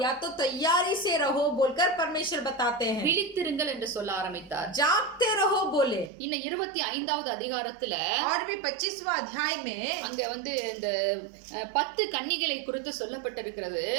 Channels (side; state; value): left; drops out; at 6.1 s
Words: या तो तैयारी से रहो बोलकर परमेश्वर बताते हैं। விழித்திருங்கள் என்று சொல்ல ஆரம்பித்தார். जागते रहो बोले। இன்னும் 25வது அதிகாரத்துல और भी 25वां अध्याय में அங்க வந்து இந்த 10 கன்னிகளை குறித்து சொல்லப்பட்டிருக்கிறது.